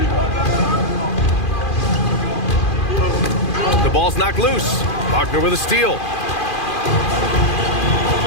The ball's knocked loose. Wagner with a steal.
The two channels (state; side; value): late; right; 2.4 ms